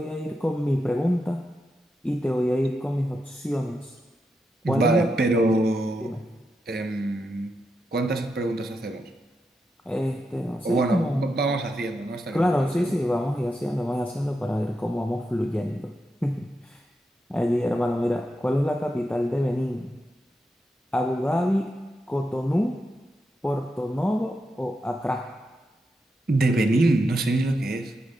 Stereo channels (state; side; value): normal; both; correlation 0.86